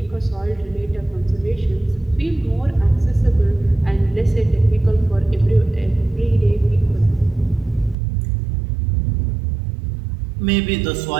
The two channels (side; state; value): left; drops out; at 8.0 s